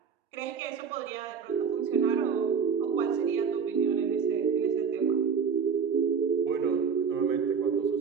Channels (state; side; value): quieter; left; 6.4 dB